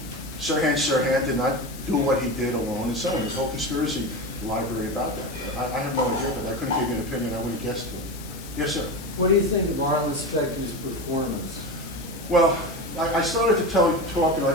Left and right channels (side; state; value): left; noise; hiss, 16 dB below the sound